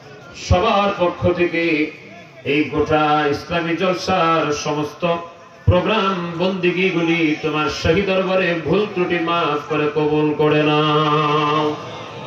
সবার পক্ষ থেকে এই গোটা ইসলামী জলসার সমস্ত প্রোগ্রাম বন্দিগিগুলি তোমার শাহী দরবারে ভুল ত্রুটি মাফ করে কবুল করে নাও।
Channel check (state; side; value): identical; both; correlation 1.00